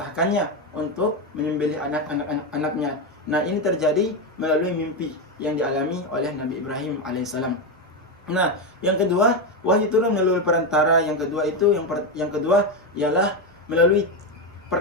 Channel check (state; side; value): normal; both; correlation 0.10